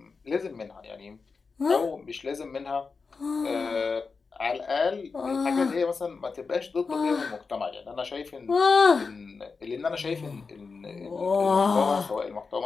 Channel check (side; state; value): right; quieter; 4.7 dB